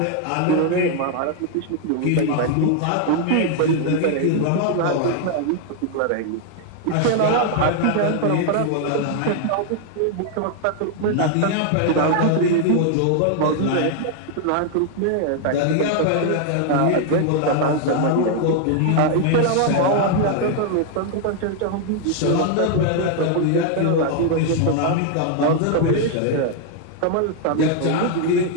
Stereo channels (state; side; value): different; both; correlation 0.00